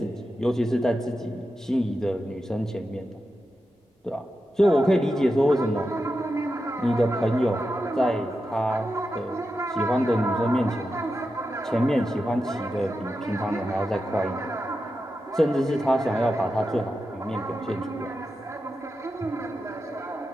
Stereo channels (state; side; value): normal; both; correlation 0.89